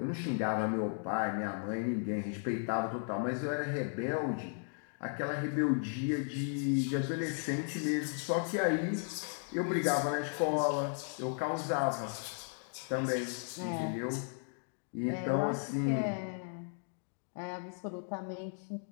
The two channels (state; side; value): silent; right; 54 dB below the other